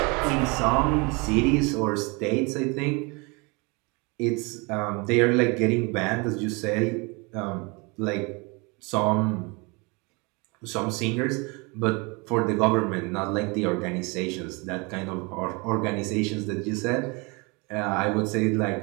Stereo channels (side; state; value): left; quieter; 28.7 dB